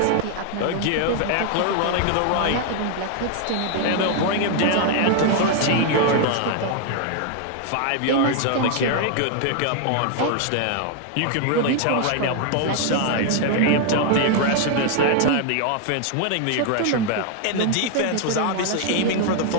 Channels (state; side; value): different; both; correlation 0.00